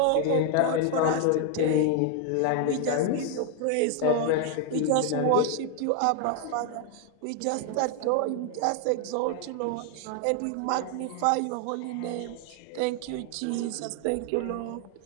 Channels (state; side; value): different; both; correlation 0.00